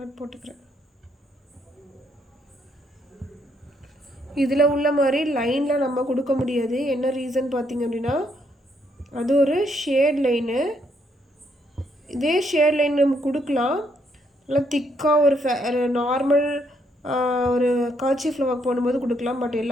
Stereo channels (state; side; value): normal; both; correlation 0.73